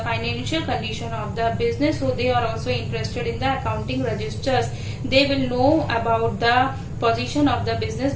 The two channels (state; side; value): identical; both; correlation 1.00